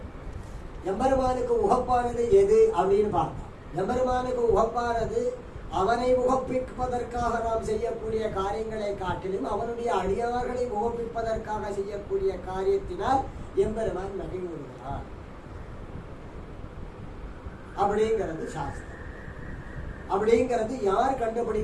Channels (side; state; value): both; identical; correlation 1.00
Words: எம்பெருமானுக்கு உகப்பானது எது அப்படின்னு பார்த்தோம். எம்பெருமானுக்கு உகப்பானது அவனை உகப்பிப்பதற்காக நாம் செய்யக்கூடிய காரியங்களை காட்டிலும் அவனுடைய அடியார்களை உகப்பிப்பதற்காக செய்யக்கூடிய காரியத்தினால் எம்பெருமான் மகிழ்வுகிறார் அப்படிங்கிறது சாஸ்திரம். அப்படிங்கிறது யார்